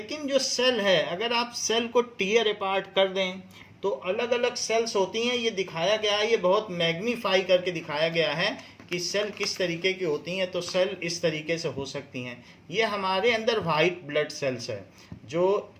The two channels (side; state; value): both; identical; correlation 1.00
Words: जो सेल है, अगर आप सेल को टीयर अपार्ट कर दें तो अलग अलग सेल्स होती हैं। ये दिखाया गया है, ये बहुत मैग्नीफाई करके दिखाया गया है कि सेल किस तरीके की होती हैं। तो सेल इस तरीके से हो सकती हैं। ये हमारे अंदर वाइट ब्लड सेल्स है, जो